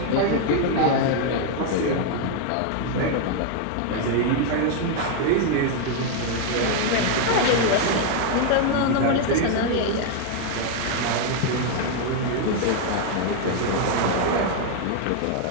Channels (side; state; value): both; different; correlation 0.00